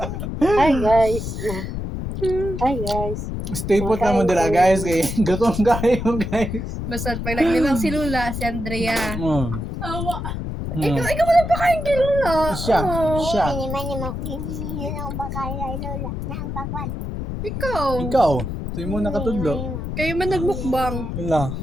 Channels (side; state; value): left; noise; rumble, 5 dB below the sound